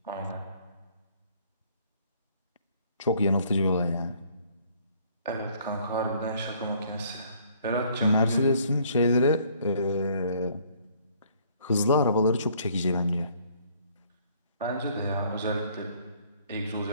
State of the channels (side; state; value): both; inverted; correlation -0.61